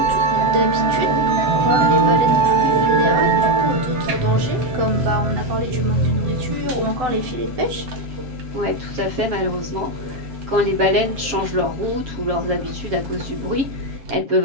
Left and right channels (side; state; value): left; late; 7.3 ms